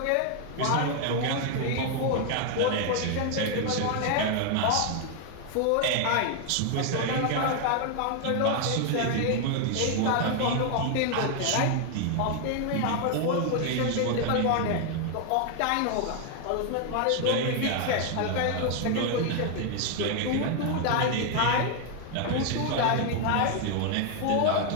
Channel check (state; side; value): different; both; correlation 0.00